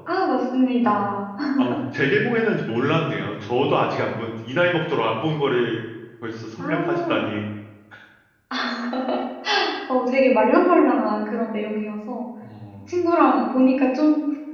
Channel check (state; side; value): identical; both; correlation 1.00